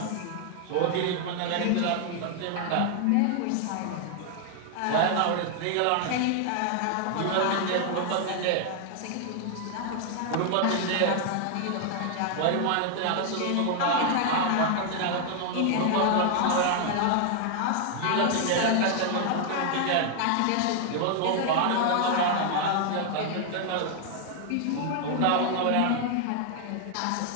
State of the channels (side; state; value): both; different; correlation 0.00